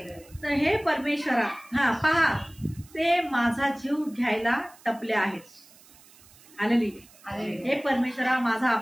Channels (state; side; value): noise; right; hiss, 25 dB below the sound